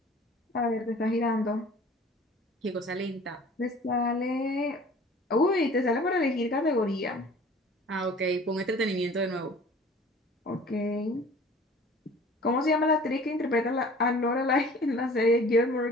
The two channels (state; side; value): normal; both; correlation 0.47